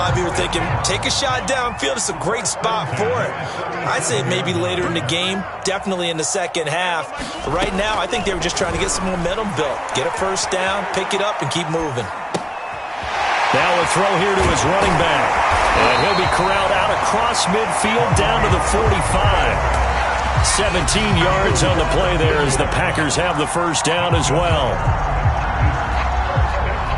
of you are thinking, take a shot downfield. It's a great spot for it. I'd say maybe later in the game, definitely in the second half. But right now, I think they were just trying to get some momentum built. Get a first down, pick it up, and keep moving. Now a throw here to his running back. And he'll be corralled out across midfield down to the 45. 17 yards on the play there as the Packers have the first down as well.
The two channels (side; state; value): both; identical; correlation 1.00